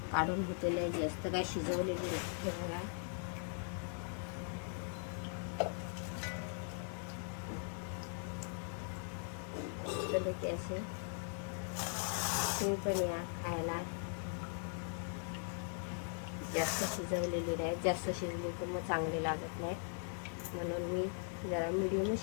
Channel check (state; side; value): silent; right; 51 dB below the other